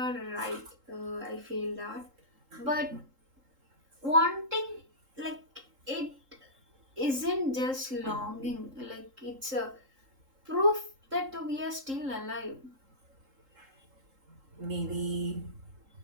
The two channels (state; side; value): late; left; 3.7 ms